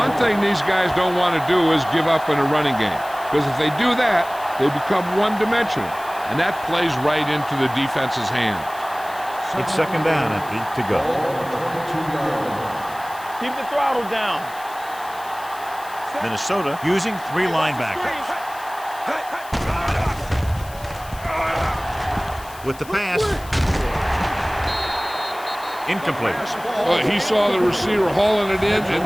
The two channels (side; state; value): left; noise; hiss, 19 dB below the sound